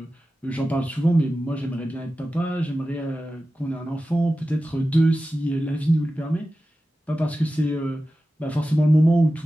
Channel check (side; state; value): both; normal; correlation 0.94